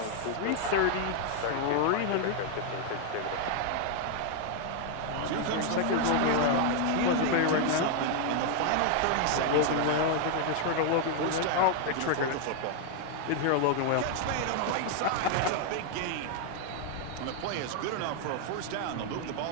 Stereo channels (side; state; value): both; different; correlation 0.00